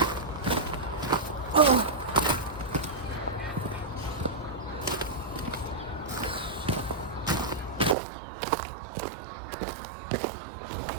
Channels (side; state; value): left; drops out; at 8.0 s